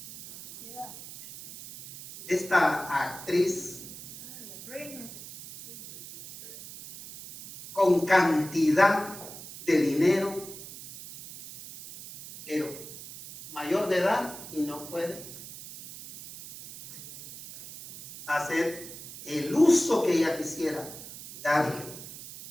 Esta actriz con cantidad de dinero, pero mayor de edad y no puede hacer el uso que ella quisiera darle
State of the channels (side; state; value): right; noise; hiss, 13 dB below the sound